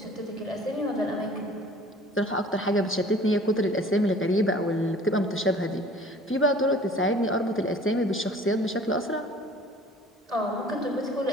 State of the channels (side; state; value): both; normal; correlation 0.49